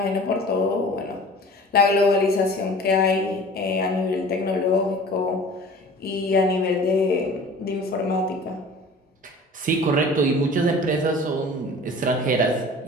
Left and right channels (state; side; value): normal; both; correlation 0.43